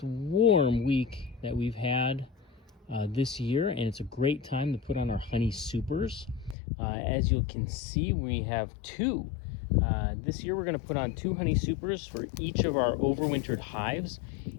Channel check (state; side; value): drops out; right; at 6.6 s